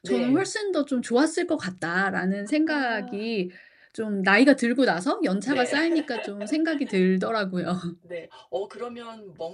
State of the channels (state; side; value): identical; both; correlation 1.00